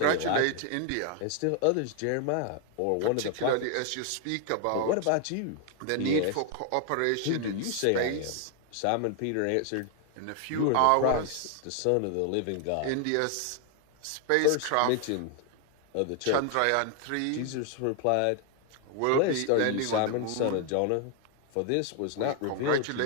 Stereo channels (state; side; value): different; both; correlation 0.00